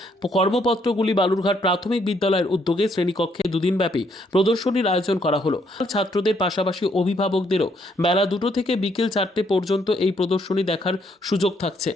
কর্মপত্রগুলি বালুরঘাট প্রাথমিক বিদ্যালয়ের উদ্যোগে শ্রেণীকক্ষে দুদিনব্যাপী প্রদর্শনীর আয়োজন করা হলো। ছাত্রদের পাশাপাশি অভিভাবকদেরও বেলা 2টো থেকে বিকেল 4টে পর্যন্ত এই প্রদর্শনী দেখার সুযোগ থাকছে।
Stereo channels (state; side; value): normal; both; correlation 0.71